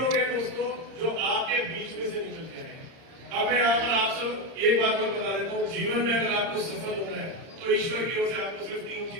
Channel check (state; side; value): late; left; 30 ms